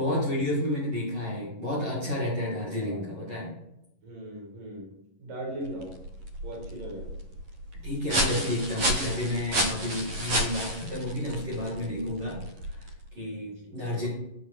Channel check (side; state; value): left; late; 11 ms